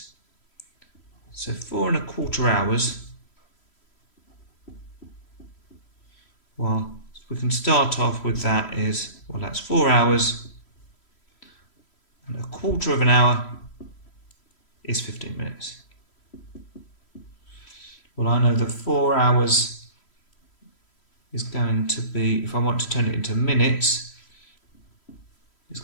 So 4.25 hours. Well, we can start off with that is, well, that's 4 hours. And 1/4 of an hour is 15 minutes. Well, I know that 4 hours is going to be, if I want to turn it into minutes, it's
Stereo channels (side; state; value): right; late; 3.1 ms